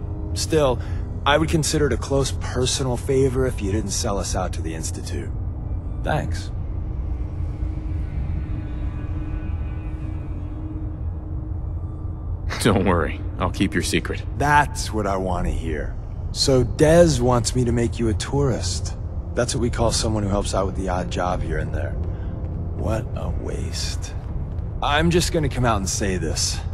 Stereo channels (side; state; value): both; identical; correlation 1.00